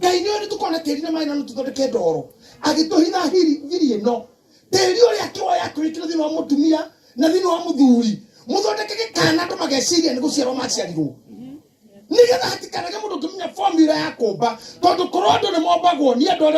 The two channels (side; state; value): both; identical; correlation 1.00